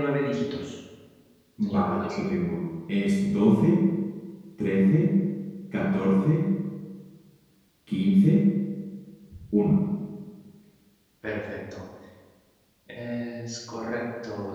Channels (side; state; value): both; identical; correlation 1.00